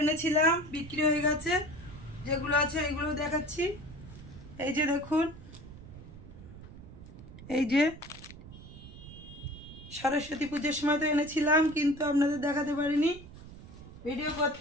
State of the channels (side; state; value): right; noise; rumble, 16 dB below the sound